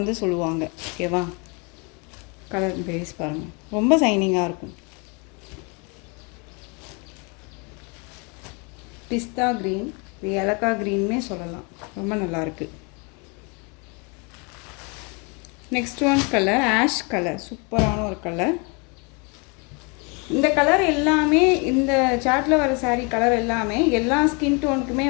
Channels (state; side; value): quieter; right; 32.3 dB